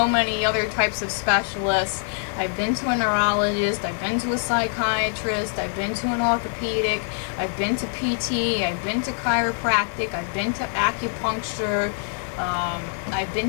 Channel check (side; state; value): right; silent; 57 dB below the other